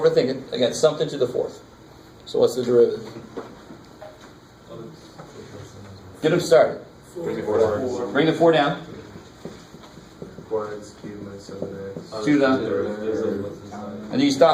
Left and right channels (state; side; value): identical; both; correlation 1.00